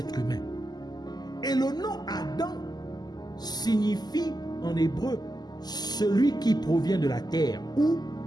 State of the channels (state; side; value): late; right; 0.20 ms